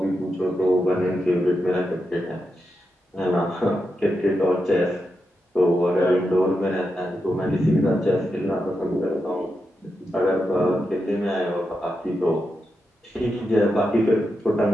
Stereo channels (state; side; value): normal; both; correlation 0.87